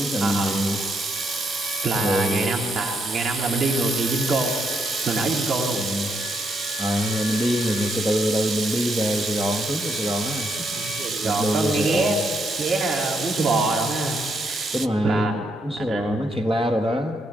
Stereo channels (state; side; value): normal; both; correlation 0.77